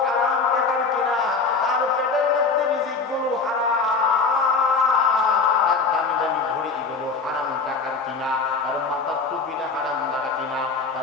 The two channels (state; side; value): quieter; right; 4.6 dB